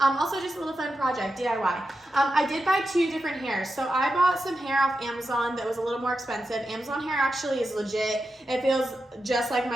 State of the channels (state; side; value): normal; both; correlation 0.89